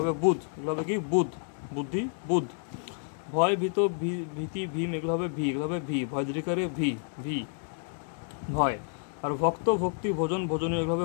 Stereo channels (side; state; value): right; silent; 58 dB below the other